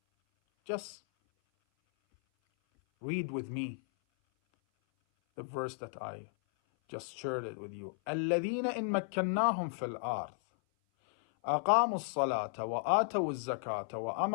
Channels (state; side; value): silent; right; 55 dB below the other